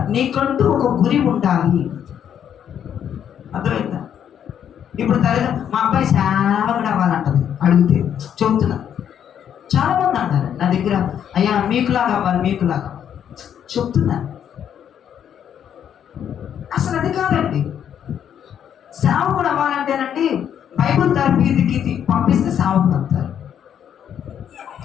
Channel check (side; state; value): right; quieter; 9.1 dB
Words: నీకంటూ ఒక గురి ఉండాలి. అర్థమైందా? ఇప్పుడు తల్లిదండ్రులు మా అబ్బాయి సేవకుడు అవ్వాలంటది అడిగితే చెబుతున్నా. చాలా మంది అంటారు నా దగ్గర, అయ్యా మీకులాగా అవ్వాలి, మీకులాగా చెప్తున్నా. అసలు అది కాదండి. సేవకుడు అవ్వాలంటేనండి బైబుల్ తరగతికి పంపిస్తే సేవకుడు అవుతారు.